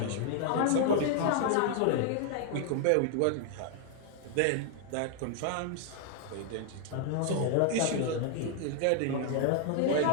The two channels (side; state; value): both; different; correlation 0.00